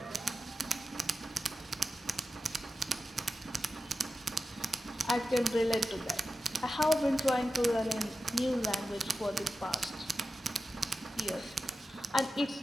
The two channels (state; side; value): normal; both; correlation 0.92